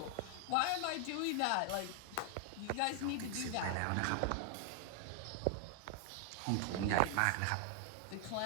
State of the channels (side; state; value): both; different; correlation 0.00